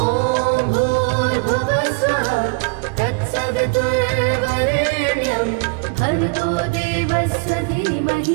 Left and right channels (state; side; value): quieter; left; 31.1 dB